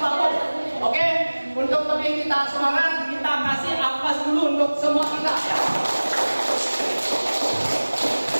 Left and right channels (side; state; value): both; inverted; correlation -1.00